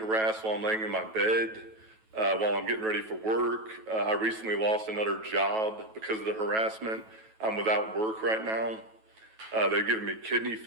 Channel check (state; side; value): late; left; 9.2 ms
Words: while I'm laying in my bed, while I'm getting ready for work. I recently lost another job because of the harassment. I'm without work right now. They've given me kidney